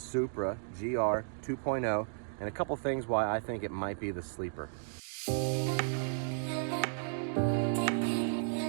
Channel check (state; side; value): silent; left; digital silence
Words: GR 2.0 and a couple things why I think it might be the sleeper.